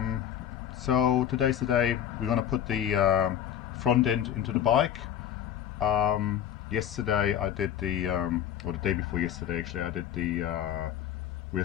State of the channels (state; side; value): quieter; right; 10.2 dB